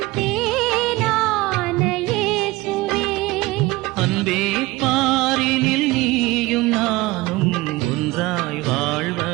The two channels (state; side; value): quieter; left; 20.6 dB